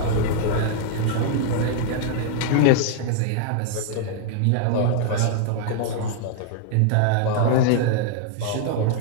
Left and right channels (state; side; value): different; both; correlation -0.01